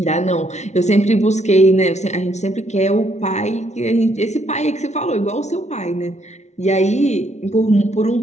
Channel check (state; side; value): late; right; 0.32 ms